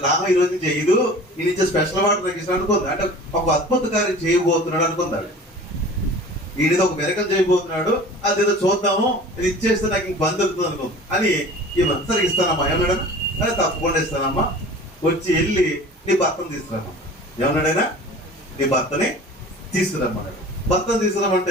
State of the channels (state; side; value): normal; both; correlation 0.41